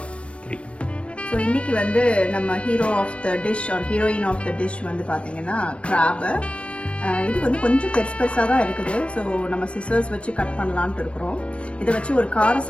ஸோ இன்னைக்கு நம்ம hero of the dish or heroine of the dish பார்த்தீங்கன்னா கிராபு. இது கொஞ்சம் பெருசாக தான் இருக்குது. ஸோ நம்ம சிசர்ஸ் வச்சு கட் பண்ணலான்ட்டு இருக்கிறோம். இதை வச்சு ஒரு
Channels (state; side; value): late; right; 0.061 ms